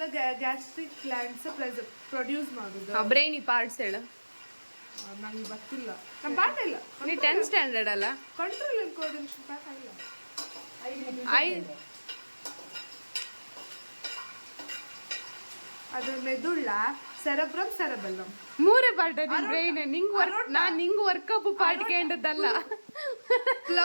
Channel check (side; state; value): both; inverted; correlation -1.00